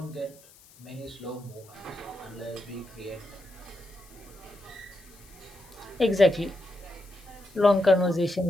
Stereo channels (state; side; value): noise; left; hiss, 24 dB below the sound